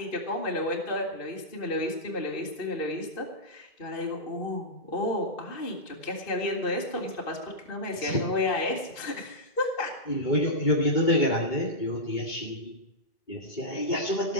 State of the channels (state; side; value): late; right; 2.5 ms